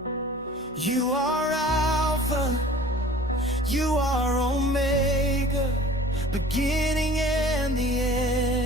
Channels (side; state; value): both; normal; correlation 0.46